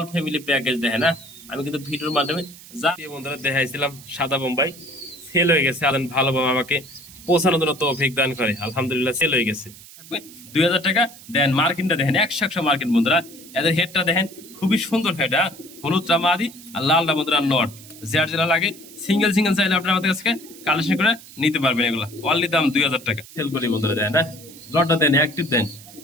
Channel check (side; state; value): right; noise; hiss, 19 dB below the sound